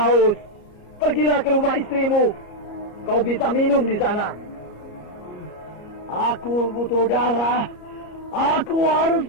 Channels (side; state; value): right; late; 33 ms